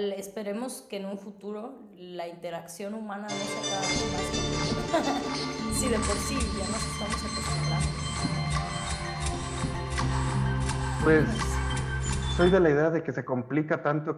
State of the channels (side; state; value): both; identical; correlation 1.00